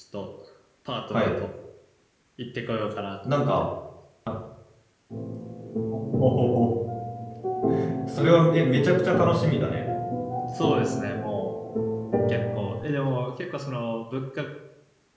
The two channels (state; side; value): identical; both; correlation 1.00